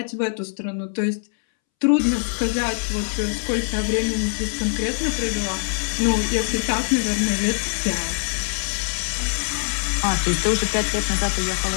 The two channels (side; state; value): right; silent; 64 dB below the other